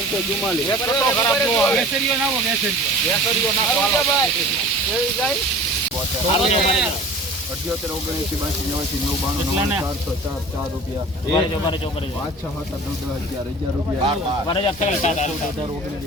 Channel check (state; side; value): normal; both; correlation 0.41